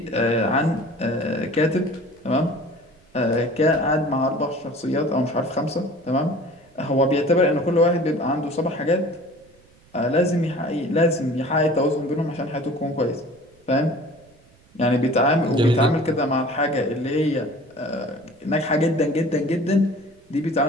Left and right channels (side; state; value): right; noise; rumble, 30 dB below the sound